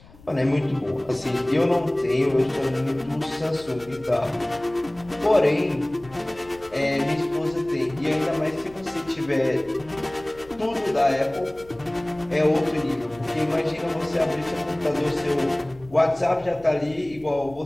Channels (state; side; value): noise; left; rumble, 24 dB below the sound